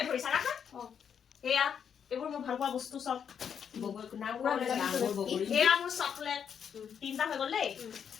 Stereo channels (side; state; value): right; quieter; 7.7 dB